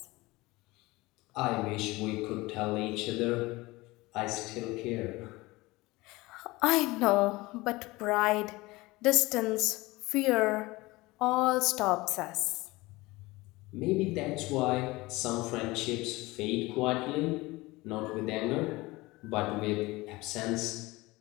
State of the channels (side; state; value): right; quieter; 21.2 dB